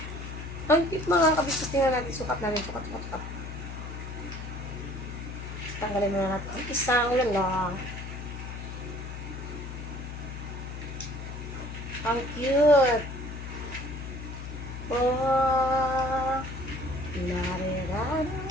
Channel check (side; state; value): left; noise; hum, 8 dB below the sound